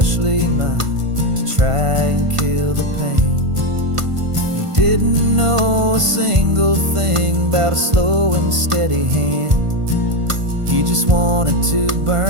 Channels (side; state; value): left; late; 1.5 ms